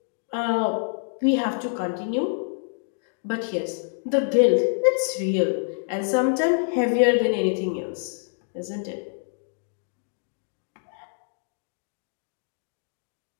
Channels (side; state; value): right; silent; digital silence